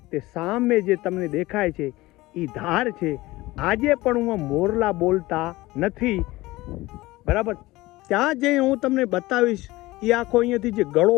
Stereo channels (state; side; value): quieter; right; 19.3 dB